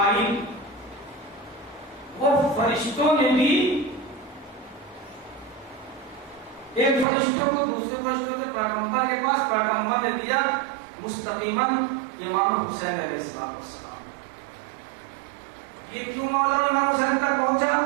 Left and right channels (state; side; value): drops out; left; at 7.1 s